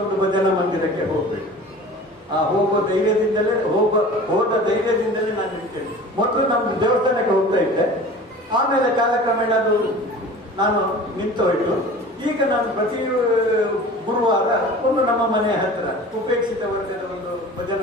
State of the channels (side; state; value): both; normal; correlation 0.40